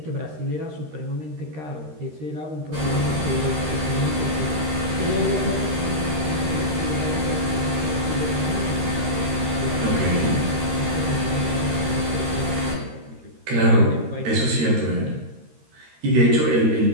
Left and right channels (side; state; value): left; late; 13 ms